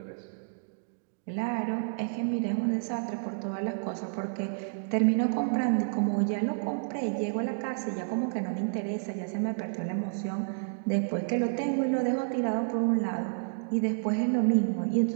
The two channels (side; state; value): left; silent; digital silence